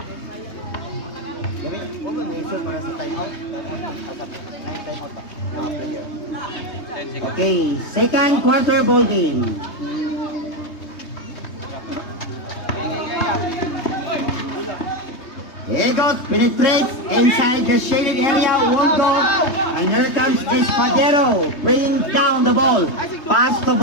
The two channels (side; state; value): right; late; 3.2 ms